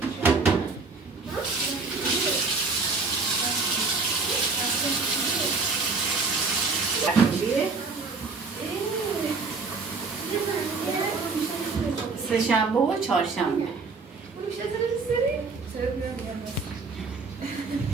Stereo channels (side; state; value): left; quieter; 4.3 dB